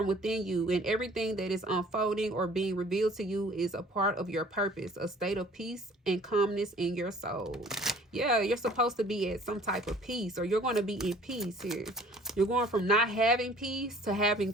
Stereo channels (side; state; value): both; normal; correlation 0.52